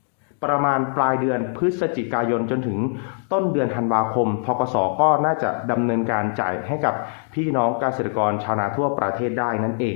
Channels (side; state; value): right; silent; 62 dB below the other